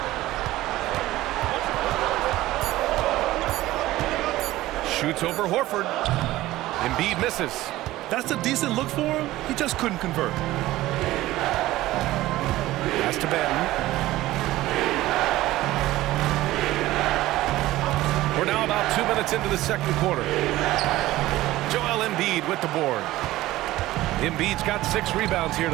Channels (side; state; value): left; quieter; 16.5 dB